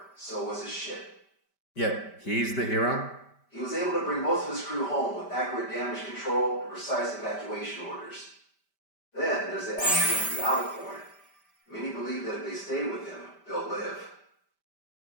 so was his ship. Yet, he's the hero? He was able to bring most of his crew home with accurate damage control and precise evacuation orders. Then there's the accident with the Alicorn. Many believe that if they stay with him, they'll live.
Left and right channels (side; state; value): right; late; 5.1 ms